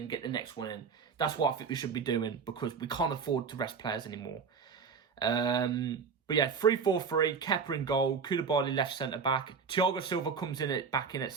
get the next one in. That's what I think we should be doing, because we can't afford to rest players anymore. But yeah, 3-4-3, Kepa in goal, Koulibaly left centre-back. Thiago Silva comes back in at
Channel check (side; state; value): left; quieter; 5.8 dB